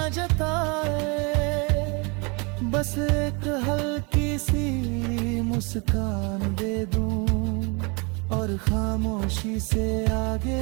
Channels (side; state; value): left; quieter; 30.7 dB